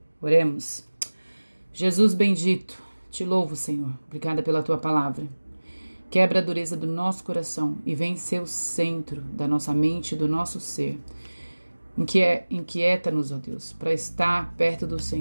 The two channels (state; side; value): inverted; both; correlation -1.00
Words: Oremos. Jesus bendito, te louvo, Senhor. Obrigada pela tua palavra. Quebra a dureza do nosso coração e vem ser o centro da nossa mente e do nosso ser. Inquieta-nos, ó Deus, para estar perto do